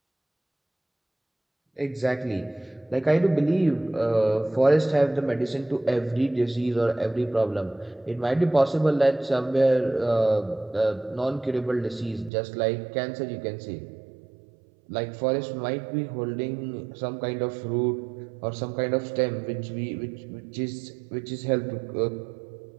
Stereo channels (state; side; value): drops out; left; at 12.3 s